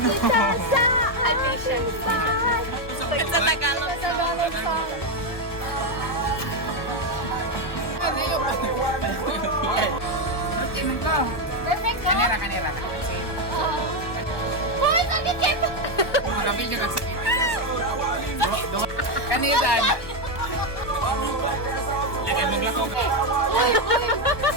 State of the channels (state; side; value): late; right; 1.3 ms